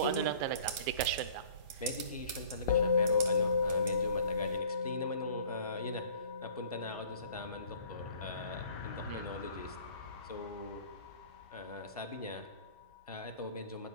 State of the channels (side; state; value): both; inverted; correlation -0.51